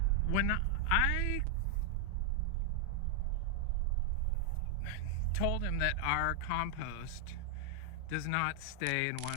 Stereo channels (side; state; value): both; different; correlation 0.00